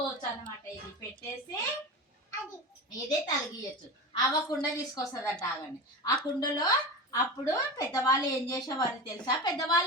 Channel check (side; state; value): both; normal; correlation 0.27